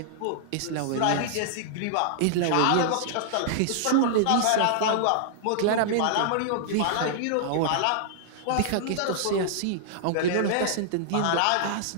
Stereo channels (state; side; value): different; both; correlation -0.01